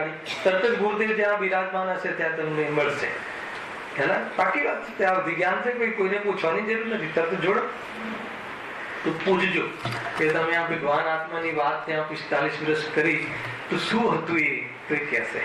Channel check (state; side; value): identical; both; correlation 1.00